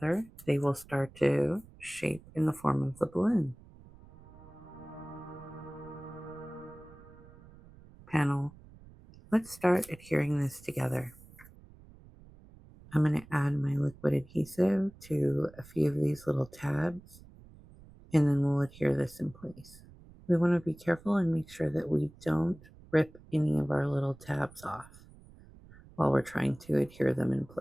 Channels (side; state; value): right; noise; rumble, 22 dB below the sound